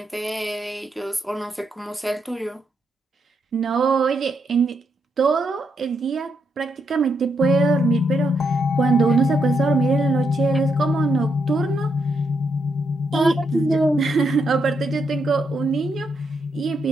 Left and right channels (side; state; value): both; normal; correlation 0.79